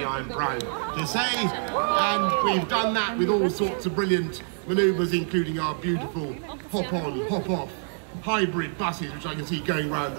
I am proud to say. And we've done that with all sorts of brilliant manoeuvres, including our beautiful hop-on, hop-off hybrid buses, which I can see going round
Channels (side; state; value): left; silent; digital silence